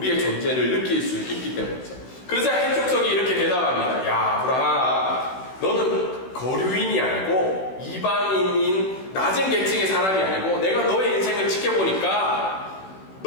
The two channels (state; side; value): late; right; 16 ms